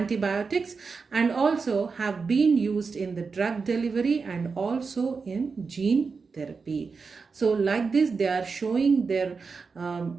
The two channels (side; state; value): left; quieter; 4.9 dB